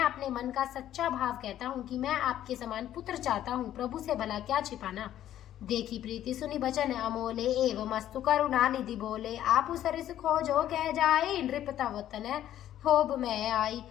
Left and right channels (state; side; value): quieter; right; 11.9 dB